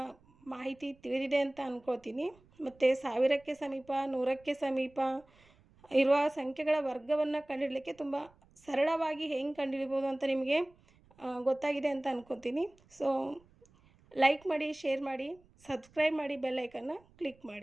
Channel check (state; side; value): noise; right; rumble, 29 dB below the sound